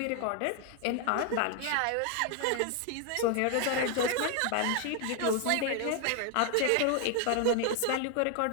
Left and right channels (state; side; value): different; both; correlation 0.00